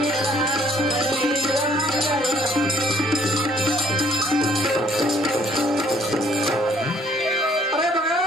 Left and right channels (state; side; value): normal; both; correlation 0.62